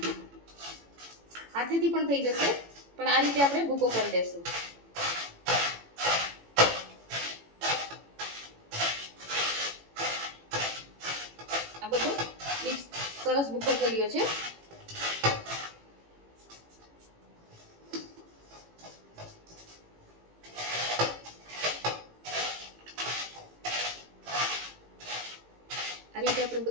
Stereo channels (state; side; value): late; left; 18 ms